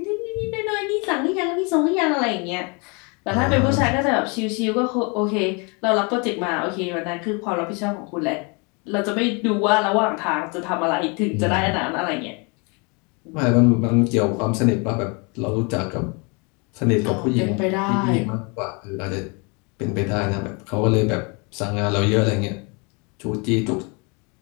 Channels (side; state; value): right; quieter; 31.7 dB